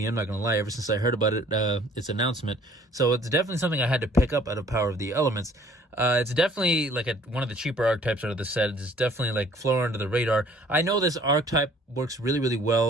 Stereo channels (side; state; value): both; normal; correlation 0.56